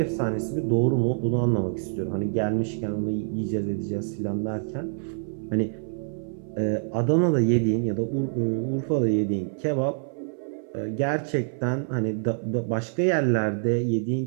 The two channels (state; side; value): silent; left; 61 dB below the other